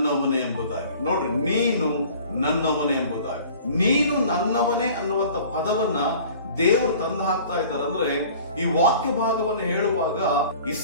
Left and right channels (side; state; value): both; inverted; correlation -0.47